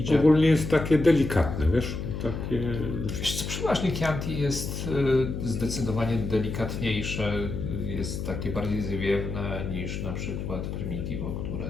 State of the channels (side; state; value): left; noise; hum, 5 dB below the sound